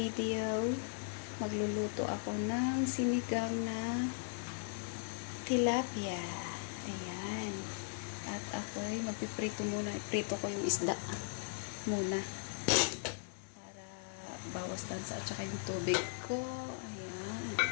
magluluto ako ng sinigang na tilapia. Ayan. At ako'y magpiprito muna. Iprito ko yung isda muna. Para bawas tansa at saka yung tubig ko. Ayan.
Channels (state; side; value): silent; right; digital silence